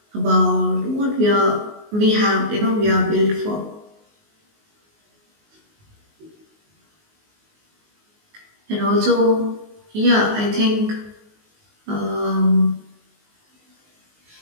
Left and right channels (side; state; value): left; late; 19 ms